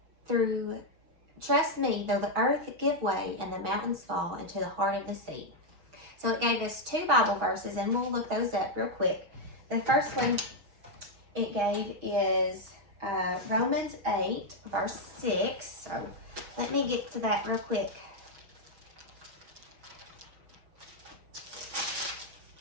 though the earth give way and the mountains fall into the heart of the sea. So it gave us 2 Bible verses, and we'll look those up real quick. The first one it gave is Romans 8, verse 6. So let me get to that real quick.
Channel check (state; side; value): late; left; 6.2 ms